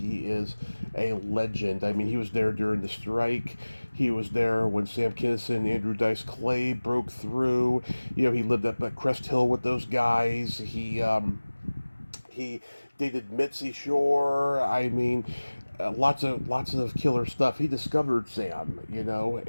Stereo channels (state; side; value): inverted; both; correlation -1.00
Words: is a legend. I mean, he was there during the strike. He was there when Sam Kinison and Andrew Dice Clay broke through. You know, he lived up at Cresthill with those guys. He dated Mitzi Shore. I mean, lots of killer stuff. He discovered Sam, you know,